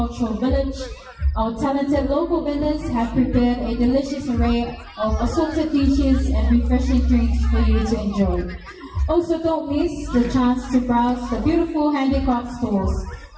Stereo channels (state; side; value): identical; both; correlation 1.00